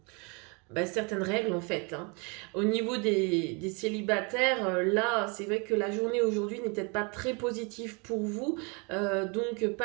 règles en fait. Hein. Au niveau des célibataires, là c'est vrai que la journée aujourd'hui n'est peut-être pas très positive pour vous, donc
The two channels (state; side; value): quieter; left; 31.9 dB